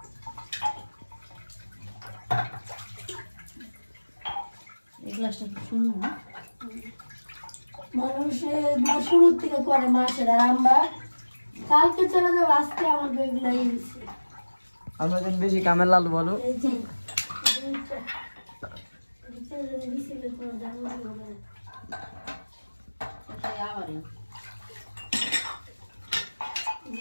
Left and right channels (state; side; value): inverted; both; correlation -1.00